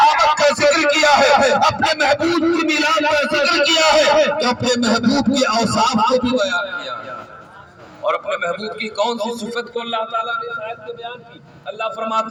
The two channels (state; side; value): identical; both; correlation 1.00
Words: آمد کا ذکر کیا ہے، اپنے محبوب کی میلاد کا ذکر کیا ہے، تو اپنے محبوب کے اوصاف کو بھی بیان کیا ہے۔ اور اپنے محبوب کی کون سی صفت کو اللہ تعالیٰ نے اس آیت میں بیان کی؟ اللہ